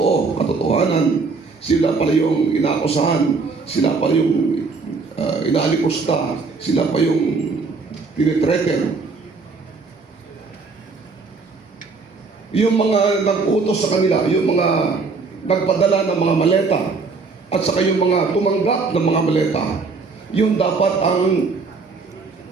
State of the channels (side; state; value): left; quieter; 4.4 dB